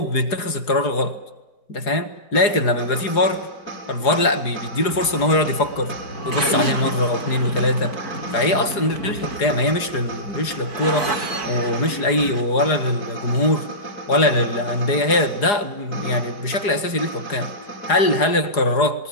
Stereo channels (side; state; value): right; late; 4.8 ms